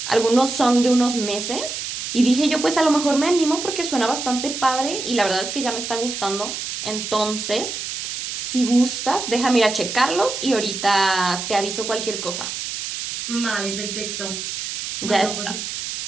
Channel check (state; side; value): noise; right; hiss, 5 dB below the sound